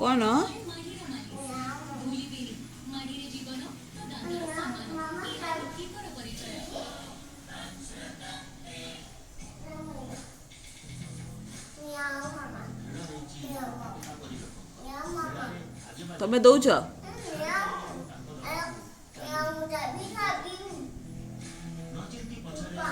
କ'ଣ? ତମେ ଦଉଛ?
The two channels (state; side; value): identical; both; correlation 1.00